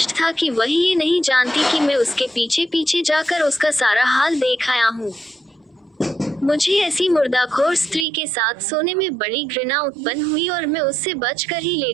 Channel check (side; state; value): left; drops out; at 8.1 s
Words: था कि वही ये नहीं जानती कि मैं उसके पीछे पीछे जाकर उसका सारा हाल देख आया हूँ। मुझे ऐसी मुर्दाखोर स्त्री के साथ सोने में बड़ी घृणा उत्पन्न हुई और मैं उससे बचकर ही